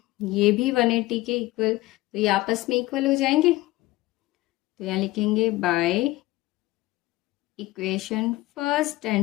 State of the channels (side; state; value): right; quieter; 18.9 dB